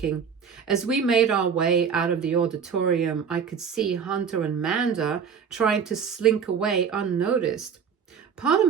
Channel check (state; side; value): quieter; left; 6.8 dB